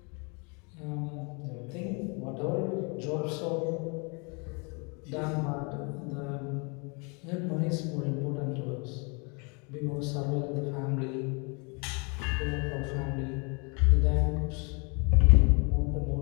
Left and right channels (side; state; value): right; quieter; 33.2 dB